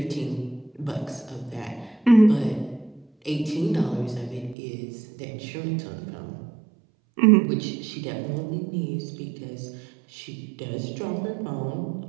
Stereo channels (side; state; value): left; drops out; at 4.5 s